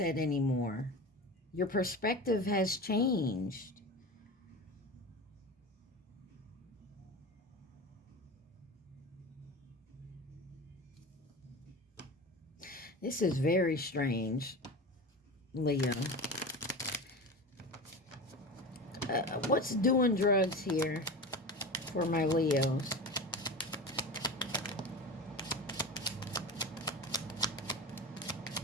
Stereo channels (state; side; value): normal; both; correlation 0.29